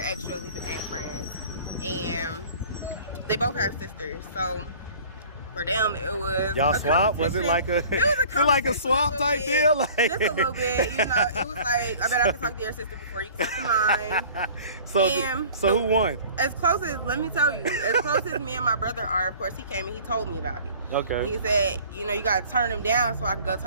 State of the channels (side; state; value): both; inverted; correlation -0.47